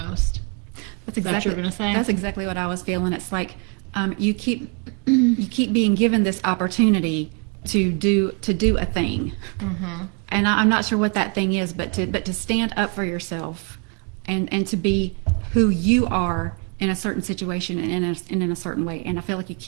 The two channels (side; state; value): left; quieter; 34.9 dB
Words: That's Is that what you're going to say? That's exactly what I was feeling. It's like you keep being given this opportunity to do a thing, and I'm not sure what that thing is, but to stand up for yourself and to be who you are in a certain situation and in a certain way. And I feel like you